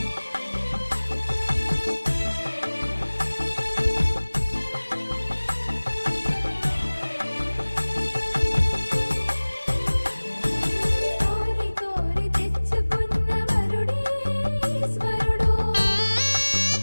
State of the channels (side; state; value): both; inverted; correlation -1.00